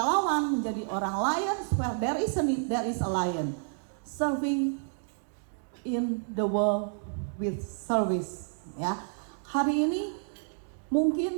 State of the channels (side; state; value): left; silent; digital silence